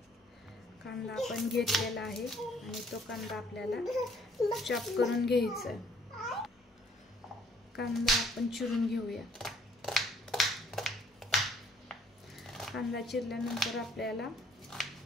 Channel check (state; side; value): normal; both; correlation 0.62